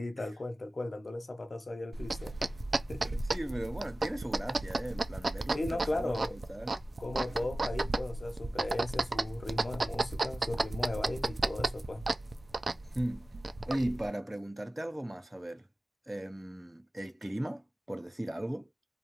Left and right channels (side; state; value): both; normal; correlation 0.96